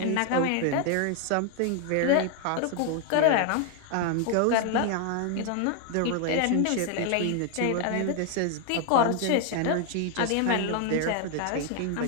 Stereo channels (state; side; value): different; both; correlation 0.00